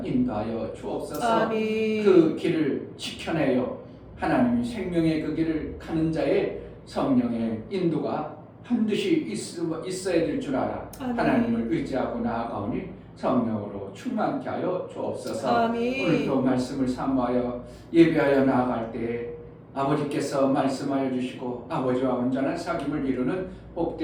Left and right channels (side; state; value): both; identical; correlation 1.00